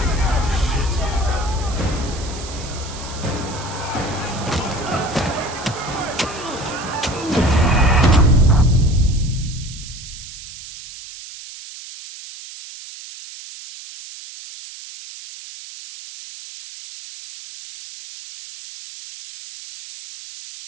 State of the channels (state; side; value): noise; right; hiss, 13 dB below the sound